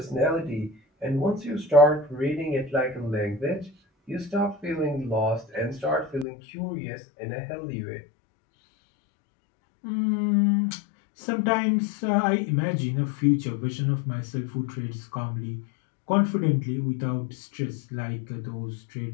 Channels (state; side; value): drops out; right; at 6.2 s